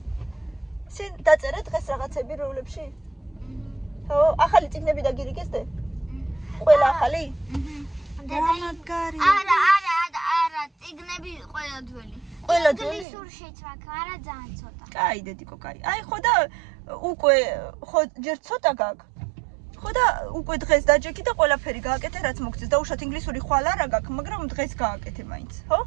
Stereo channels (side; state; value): left; drops out; at 13.1 s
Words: სენ დაწერე დღეს რაღაცები როვლებში? ხო, ახალი წიგნები დაგირიგეს დე? ყველა ახალი? მაგარი. არა, წიგნები ყველა ძველი. ყველა ძველი? ინგლისურშიც მაქვს, არა ძალიან ცოტა. კაი, დედიკო, კაი. აი ხო და უკვე ხო ჯერ ცოტა გაქვს. ხო და უკვე დღეს დაჯექი და ყველაფერი გააკეთე, რაც მოგწეს. დაუშვათ ინგლისური ხვალ არა გაქვს, მაგრამ დღეს გააკეთე მაინც, ხო?